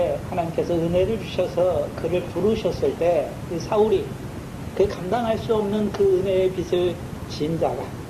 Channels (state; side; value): identical; both; correlation 1.00